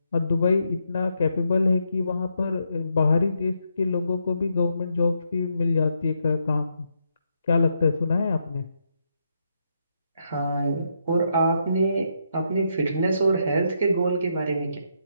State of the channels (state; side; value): inverted; both; correlation -0.79